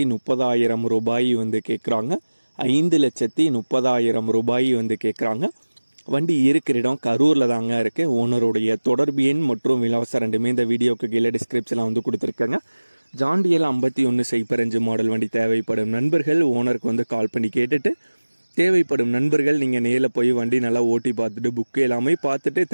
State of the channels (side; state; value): both; inverted; correlation -1.00